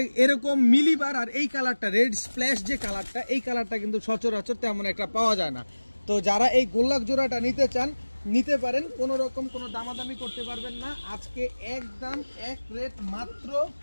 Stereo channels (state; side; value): inverted; both; correlation -1.00